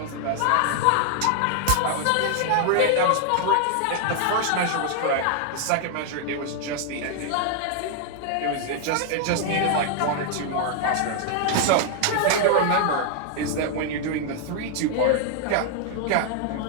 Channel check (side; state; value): both; different; correlation 0.00